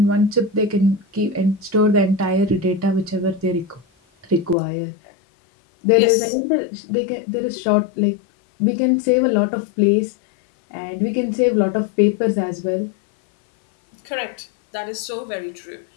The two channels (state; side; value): drops out; right; at 4.5 s